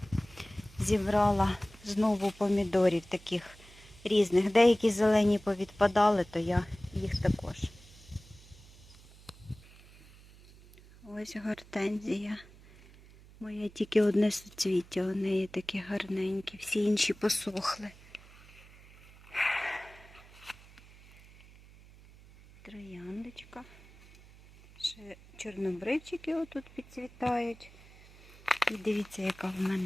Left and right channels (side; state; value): right; noise; hum, 22 dB below the sound